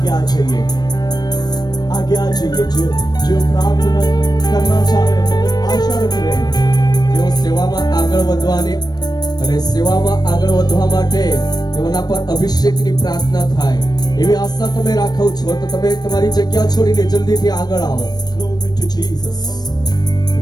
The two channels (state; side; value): late; right; 0.19 ms